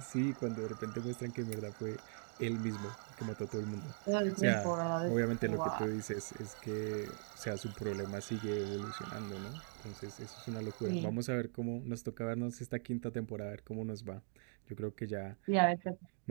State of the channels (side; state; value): left; silent; 51 dB below the other